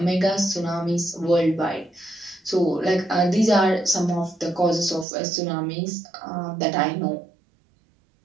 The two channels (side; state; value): left; drops out; at 5.1 s